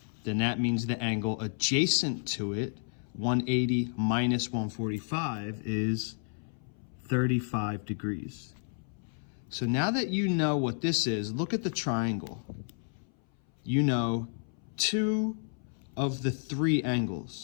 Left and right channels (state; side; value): silent; right; 57 dB below the other